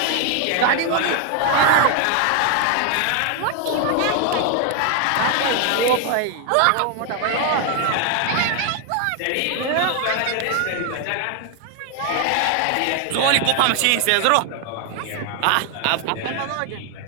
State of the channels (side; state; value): both; different; correlation 0.00